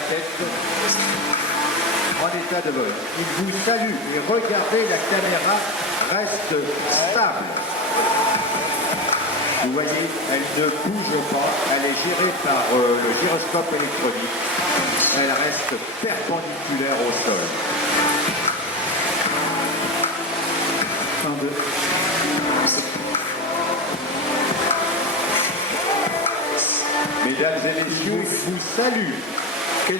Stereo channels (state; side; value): normal; both; correlation 0.19